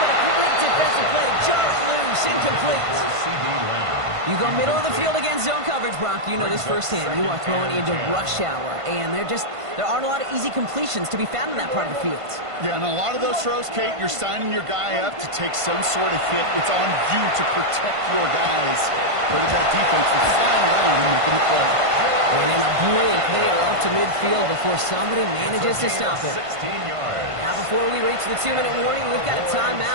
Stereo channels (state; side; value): late; left; 1.5 ms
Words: a complete defensive play to jar it loose, incomplete. You go middle of the field against zone coverage, Brock. You know this firsthand. You are throwing into rush hour, and there aren't a lot of easy completions to be found in that part of the field. Yeah, and a lot of those throws, Kate, you're signing your guy up to take some sort of hit. It's on you to protect your guys. But that defense was flying around and making the play. And in a blink, they are up to midfield before somebody manages to stop it. Now, before we reach the 2-minute warning, we've got a